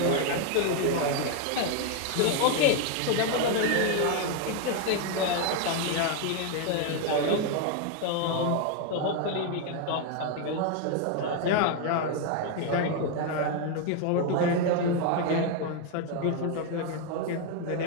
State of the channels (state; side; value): different; both; correlation 0.01